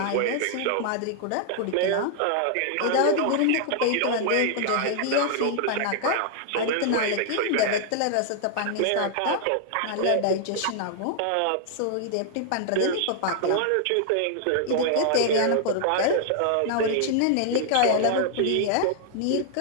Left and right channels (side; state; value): both; different; correlation -0.01